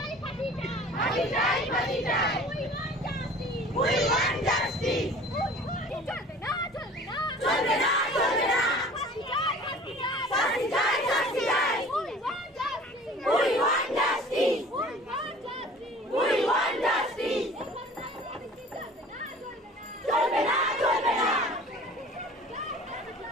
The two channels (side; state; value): both; normal; correlation 0.45